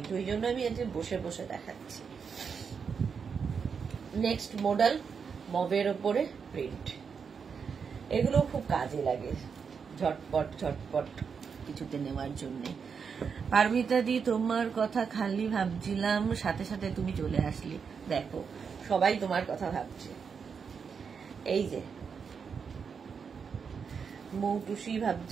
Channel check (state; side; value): quieter; left; 6.1 dB